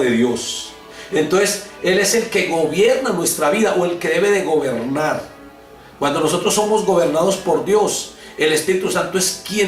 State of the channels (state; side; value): identical; both; correlation 1.00